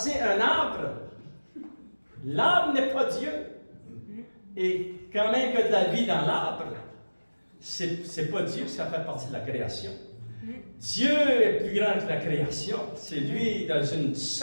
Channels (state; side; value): inverted; both; correlation -1.00